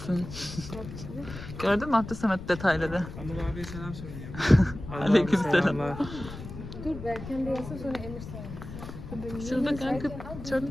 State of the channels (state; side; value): noise; left; rumble, 11 dB below the sound